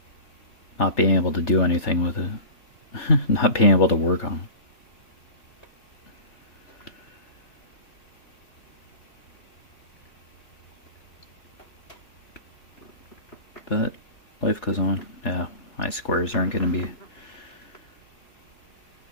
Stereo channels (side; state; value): right; late; 3.4 ms